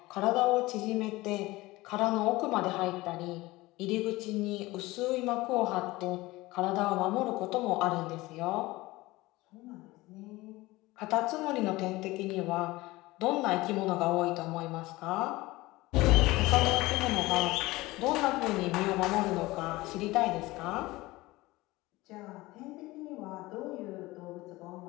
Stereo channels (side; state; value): right; quieter; 20.0 dB